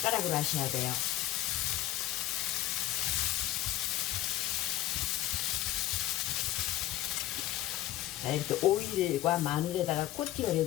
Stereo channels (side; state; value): right; quieter; 14.5 dB